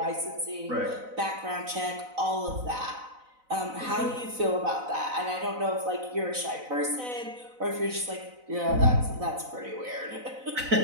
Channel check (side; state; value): left; late; 4.0 ms